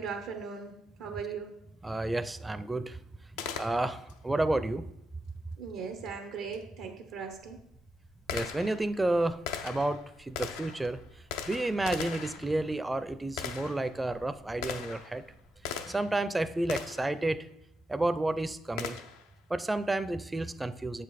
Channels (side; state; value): both; normal; correlation 0.87